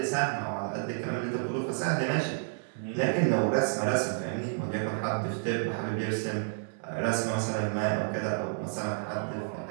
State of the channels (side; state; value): left; silent; digital silence